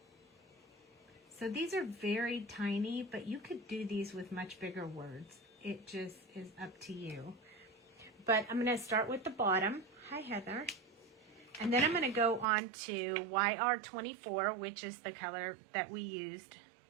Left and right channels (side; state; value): left; drops out; at 12.5 s